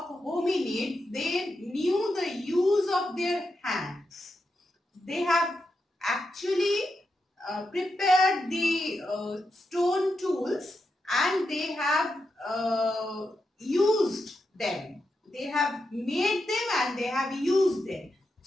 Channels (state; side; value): normal; both; correlation 0.86